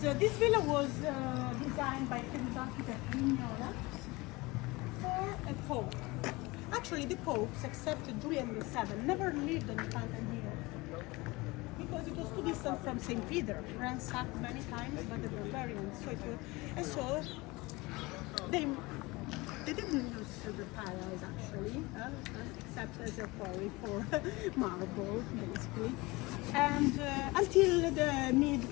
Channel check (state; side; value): quieter; right; 22.9 dB